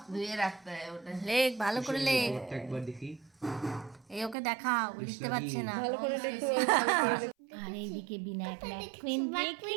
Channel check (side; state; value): left; drops out; at 4.4 s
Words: ধুয়ে রাখতে হয় ওটা। লেখ ভালো করে লেখ একবার দেখি এই ওকে দেখাও বুঝতে পারছে না আর এইদিকে বিনায়ক ম্যাকুইন দেখে